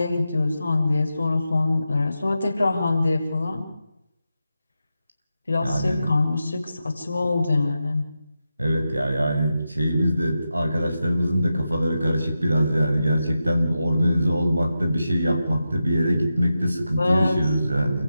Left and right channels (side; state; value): both; inverted; correlation -0.90